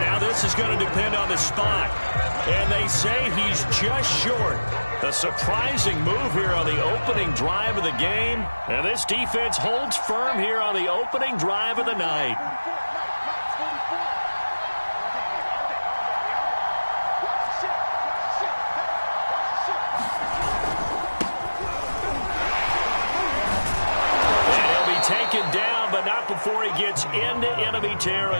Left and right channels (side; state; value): both; inverted; correlation -1.00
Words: now this is going to depend on the spot. And they say he's just short. A surprising move here on the opening drive of the game. And this defense holds firm here on the opening drive of the night. And he'll be taken down, but not before he gets into enemy